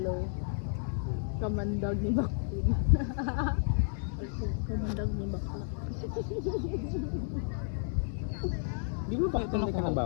Kamandag ni Baktin. Kamandag ni Bakla. Di mo bakit ka ng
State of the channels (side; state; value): right; silent; 56 dB below the other